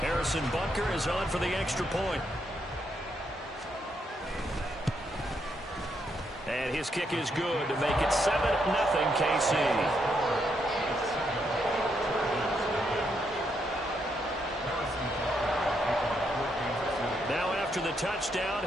Butker is on for the extra point. And his kick is good to make it 7-0 KC. Now after the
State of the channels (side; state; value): both; normal; correlation 0.78